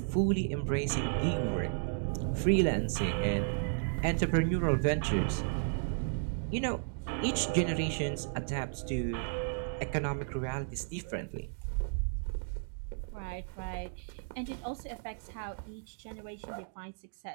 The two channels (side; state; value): left; silent; digital silence